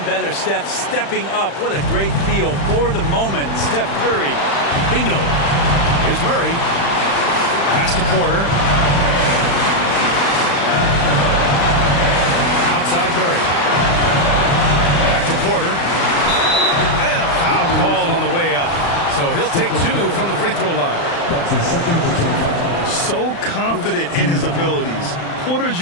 better. Steph stepping up. What a great feel for the moment. Steph Curry. Bingo. Here's Murray. Pass to Porter. Outside Murray. Back to Porter. And a foul called on the way up. So he'll take 2 from the free throw line. That's his second personal foul. So confident in his abilities. Porter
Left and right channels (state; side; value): late; right; 35 ms